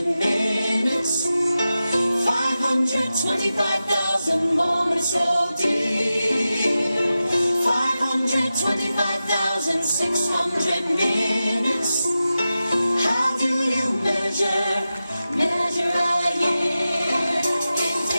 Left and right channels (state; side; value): inverted; both; correlation -0.93